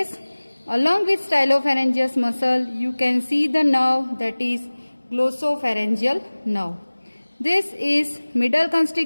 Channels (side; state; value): both; inverted; correlation -1.00